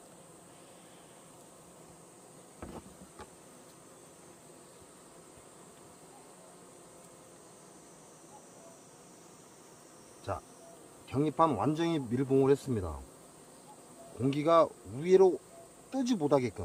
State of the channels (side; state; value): both; identical; correlation 1.00